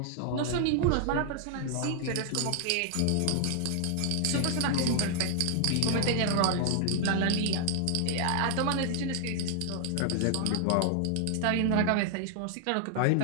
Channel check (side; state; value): both; different; correlation -0.01